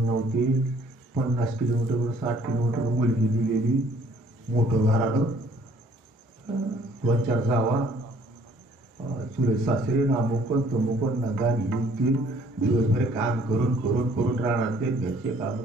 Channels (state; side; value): normal; both; correlation 0.59